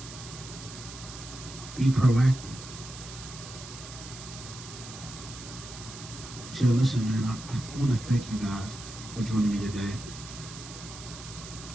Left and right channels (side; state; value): right; noise; hiss, 13 dB below the sound